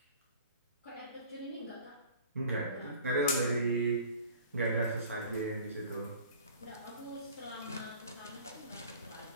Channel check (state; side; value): inverted; both; correlation -0.45